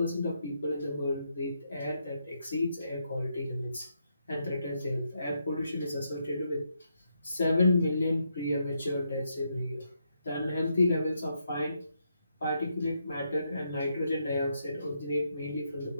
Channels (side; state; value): both; inverted; correlation -0.79